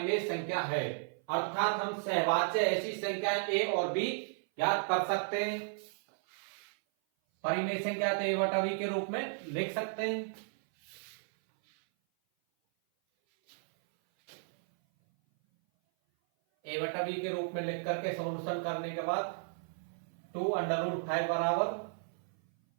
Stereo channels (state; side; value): silent; left; 55 dB below the other